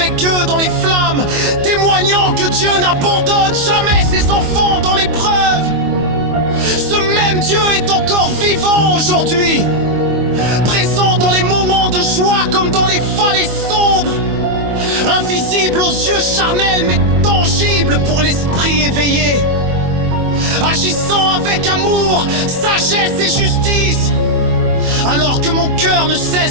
eux dans les flammes, témoignant que Dieu n'abandonne jamais ses enfants dans l'épreuve. Ce même Dieu est encore vivant aujourd'hui, présent dans les moments de joie comme dans les vallées sombres, invisible aux yeux charnels mais tangible pour l'esprit éveillé, agissant avec amour, sagesse et justice, alors que mon cœur ne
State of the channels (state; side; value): late; left; 25 ms